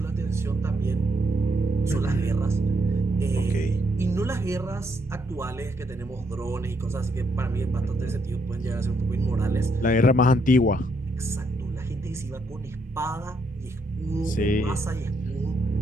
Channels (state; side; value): normal; both; correlation 0.75